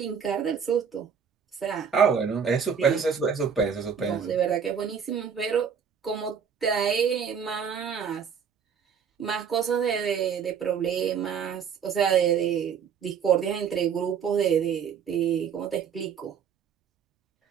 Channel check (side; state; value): left; quieter; 7.1 dB